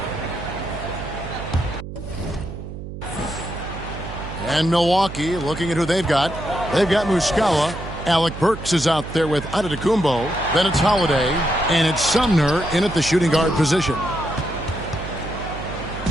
And Milwaukee looking at who they've got. They've got Muscala. Alec Burks is out there with Antetokounmpo. Then it's Holiday. And it's Sumner in at the shooting guard position.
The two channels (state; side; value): noise; right; hum, 10 dB below the sound